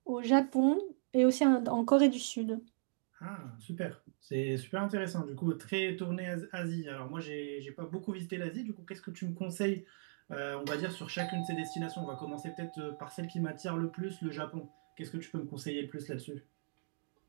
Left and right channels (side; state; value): left; silent; digital silence